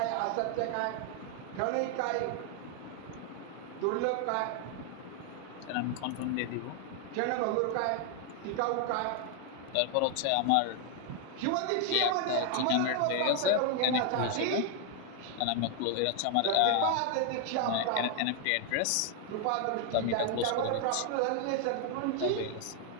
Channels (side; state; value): both; different; correlation 0.00